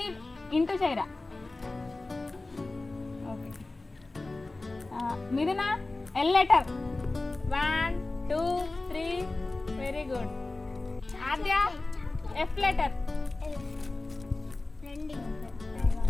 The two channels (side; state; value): right; quieter; 3.2 dB